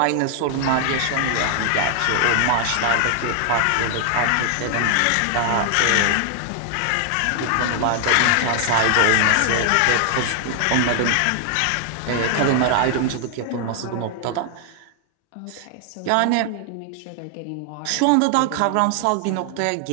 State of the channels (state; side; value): different; both; correlation 0.00